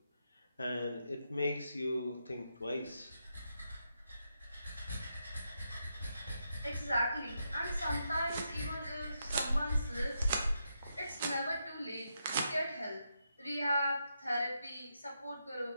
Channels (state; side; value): inverted; both; correlation -0.83